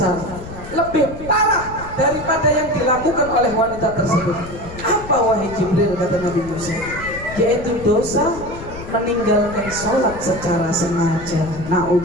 lebih parah daripada yang dilakukan oleh wanita tersebut. Apa wahai Jibril, kata Nabi Musa? Yaitu dosa meninggalkan sholat secara sengaja.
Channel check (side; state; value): left; noise; rumble, 13 dB below the sound